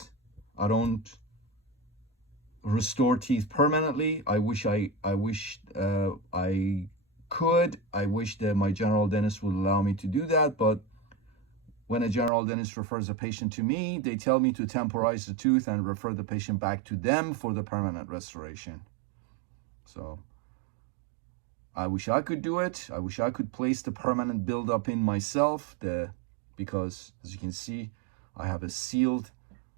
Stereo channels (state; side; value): drops out; left; at 12.3 s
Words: I don't restore teeth permanently. I wish I could. I wish that my general dentist would allow me to do that, but when a general dentist refers a patient to me, they tell me to temporize the tooth and refer the patient back to them for the permanent restoration. So I wish I could do it. I wish I could place the permanent buildup in myself, because as you can see, I have a sealed,